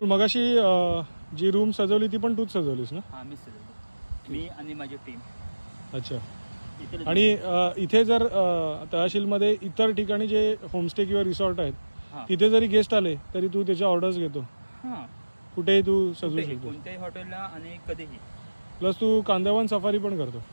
मगाशी जी रूम सजवली ती पण तूच सजवलीस ना? हा, मी सजवली, मी आणि माझी टीम. अच्छा. आणि इथे जर तहसीलमध्ये इतर ठिकाणी जे होमस्टे किंवा रिसॉर्ट आहेत तिथे जरी गेस्ट आले तरी तू त्याच्या ऑर्डर्स घेतो? कुठेही तू सजवू शकतो, कोणत्याही हॉटेलला आणि कधीही. प्लस तू कांदळवन सफारी पण करतो?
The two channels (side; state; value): both; inverted; correlation -1.00